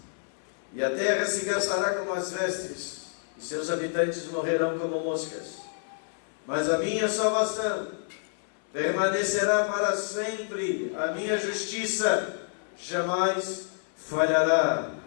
e a terra se gastará como as vestes, e seus habitantes morrerão como moscas. Mas a minha salvação permanecerá para sempre, a minha justiça jamais falhará.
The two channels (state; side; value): silent; right; 59 dB below the other